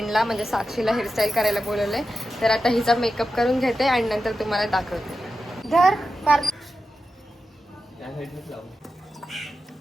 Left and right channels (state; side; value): normal; both; correlation 0.91